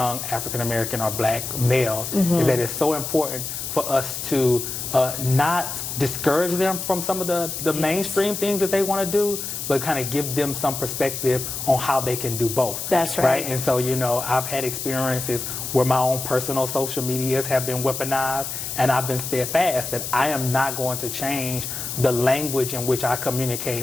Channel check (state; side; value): noise; left; hiss, 5 dB below the sound